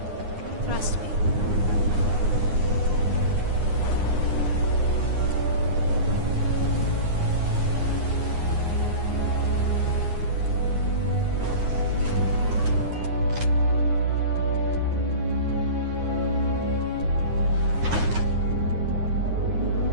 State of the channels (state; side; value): late; left; 9.6 ms